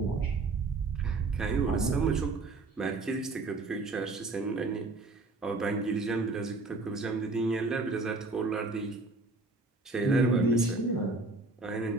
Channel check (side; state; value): left; quieter; 3.3 dB